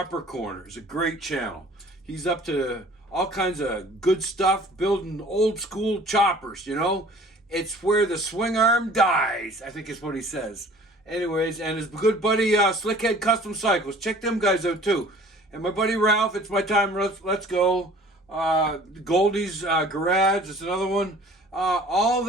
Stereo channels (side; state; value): both; normal; correlation 0.49